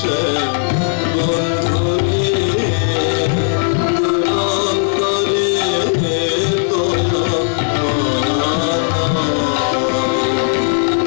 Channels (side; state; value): right; silent; 62 dB below the other